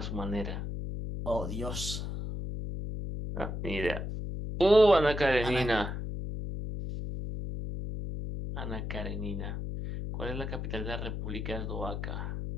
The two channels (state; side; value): noise; left; hum, 4 dB below the sound